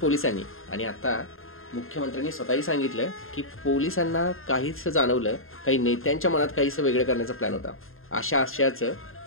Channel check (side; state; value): right; late; 0.60 ms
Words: आणि आता मुख्यमंत्र्यांनी स्वतःही सांगितलं की पोलिसांना काहीसं जाणवलं, काही नेत्यांच्या मनात काहीसं वेगळं करण्याचा प्लॅन होता. अशा आशयाचं